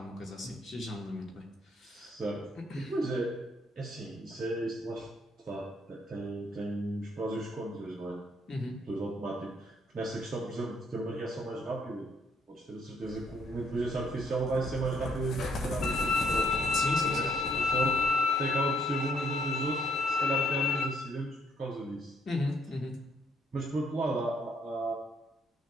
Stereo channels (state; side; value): normal; both; correlation 0.68